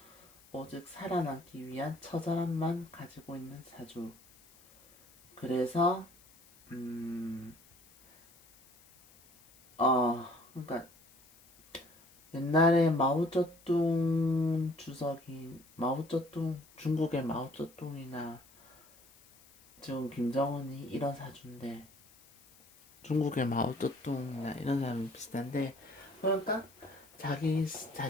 오직 살아남기 위한 처절함만 가지고 있는 사주. 그래서 그러니까 옛날에 마오쩌둥 중국의 마오쩌둥이나 지금 김정은이 이런 사주인데 중국의 마오쩌둥이나 이런 사람이 비슷한데 그러니까 자기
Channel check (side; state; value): left; noise; hiss, 26 dB below the sound